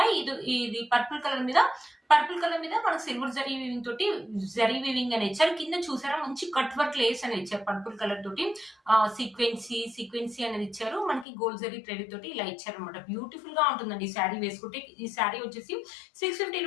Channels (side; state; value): right; drops out; at 11.2 s